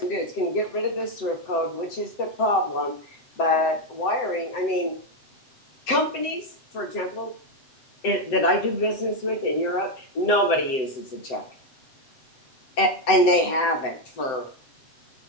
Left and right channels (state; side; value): late; right; 7.8 ms